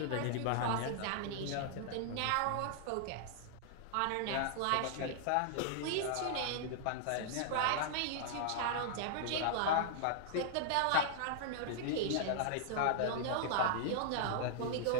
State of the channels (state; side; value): different; both; correlation -0.01